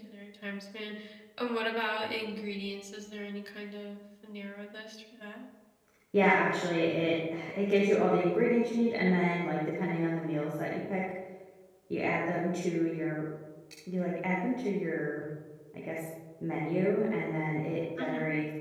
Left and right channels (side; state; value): both; identical; correlation 1.00